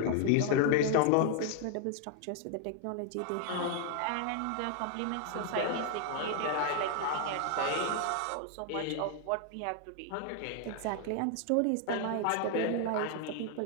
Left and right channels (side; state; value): both; different; correlation 0.00